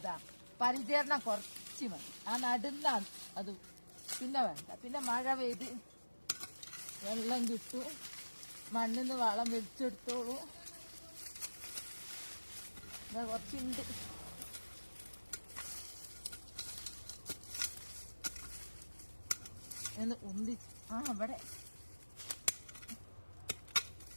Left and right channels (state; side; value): inverted; both; correlation -1.00